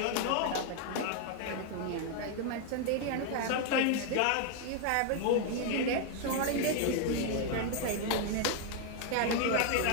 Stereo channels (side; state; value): both; different; correlation 0.00